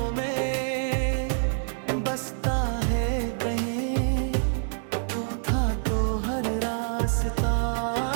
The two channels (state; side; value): silent; left; digital silence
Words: में बसता है कहीं। तू था तो हर रास्ता